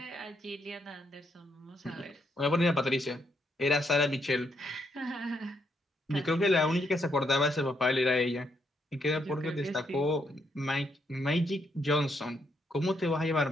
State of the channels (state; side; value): normal; both; correlation 0.76